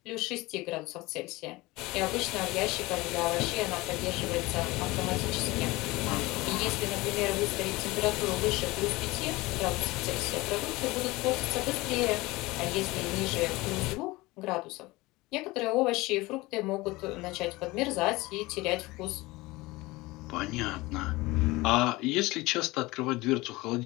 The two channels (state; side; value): quieter; right; 21.2 dB